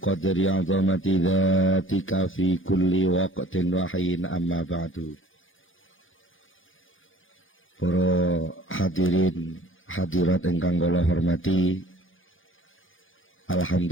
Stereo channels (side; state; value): right; late; 0.58 ms